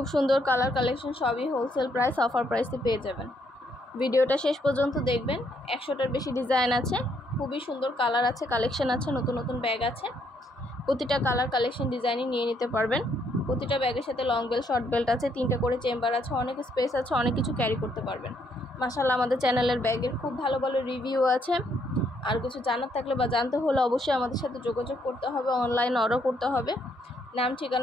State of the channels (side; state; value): both; normal; correlation 0.72